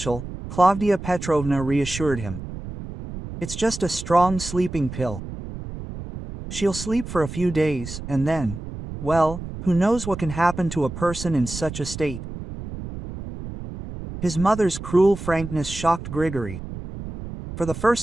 Klavdia Petrovna reassured him. "It's just a strong sleeping pill. She'll sleep for a few days, and then, well, Who knows what can happen to a person in such a state? His mother's cruel frankness shocked Grigory. For the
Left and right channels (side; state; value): right; noise; rumble, 10 dB below the sound